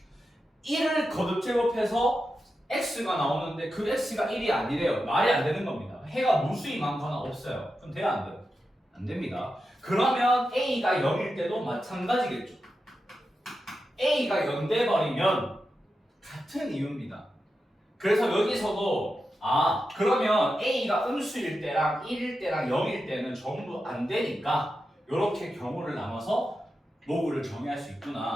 1을 거듭 제곱해서 x가 나오는데 그 x가 1이 아니래요. 말이 안 되는 겁니다. 해가 무수히 많거나 없어요. 그럼 돼요? 안 돼요? 안 됩니다. 그러면 a가 0일 때도 마찬가지겠죠. a가 0 돼버리면 같은 이유입니다. 그래서 여기서도 그러면 a가 음수일 때랑 1일 때랑 0일 때는 전부 안 되니까 이렇게 경우를 나눠서 로그를 정의할 수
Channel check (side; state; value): both; normal; correlation 0.89